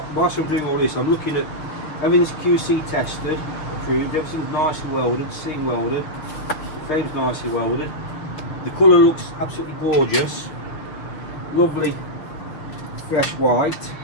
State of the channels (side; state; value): right; late; 6.4 ms